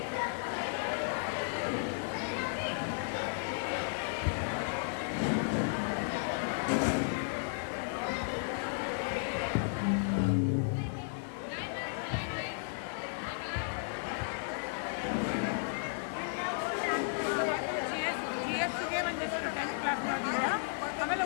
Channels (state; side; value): silent; right; 55 dB below the other